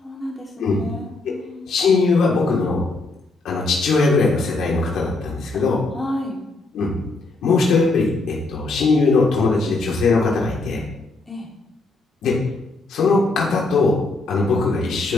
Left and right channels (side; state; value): right; quieter; 3.3 dB